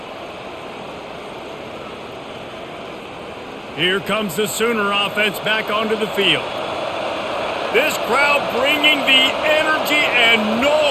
Here comes the Sooner offense back onto the field. This crowd bringing the energy and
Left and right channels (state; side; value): identical; both; correlation 1.00